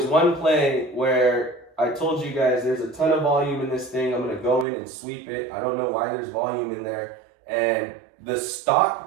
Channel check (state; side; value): drops out; left; at 4.7 s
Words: one play where I told you guys there's a ton of volume in this thing. I'm going to go in and sweep it. I don't know why there's volume in there. And the